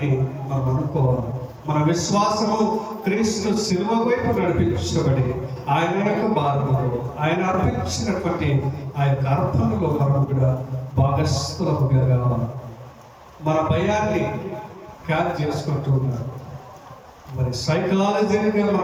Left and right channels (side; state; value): both; identical; correlation 1.00